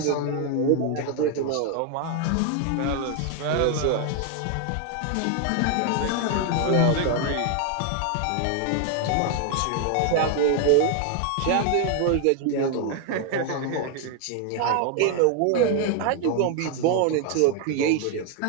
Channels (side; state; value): both; different; correlation 0.00